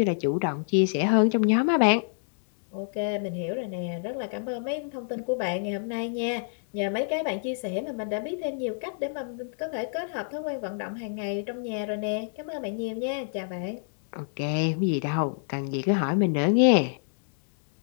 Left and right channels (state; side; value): silent; right; digital silence